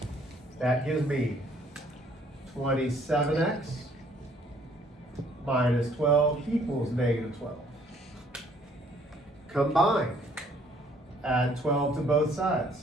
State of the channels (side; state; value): both; normal; correlation 0.62